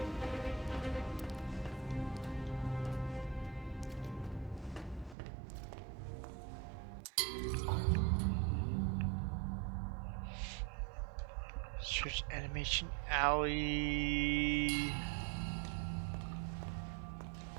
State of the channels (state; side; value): drops out; left; at 5.2 s